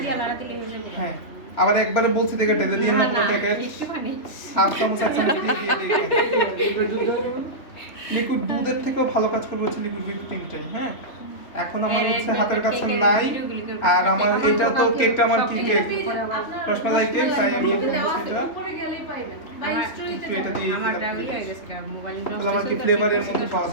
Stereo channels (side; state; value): right; late; 3.2 ms